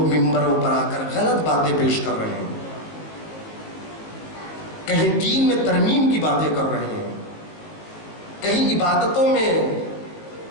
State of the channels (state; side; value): late; right; 19 ms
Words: ممبروں پر آ کر غلط باتیں پیش کر رہے ہیں، کہیں دین میں ترمیم کی باتیں کر رہے ہیں، کہیں عبادتوں میں